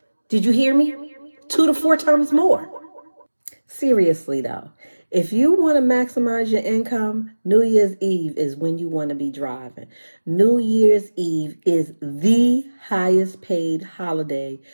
Did you hear me? 2 to 4 times more. Seriously though, if you want to maximize your income, New Year's Eve is when you want to be driving. New Year's Eve is the highest paid holiday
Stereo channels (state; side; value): inverted; both; correlation -1.00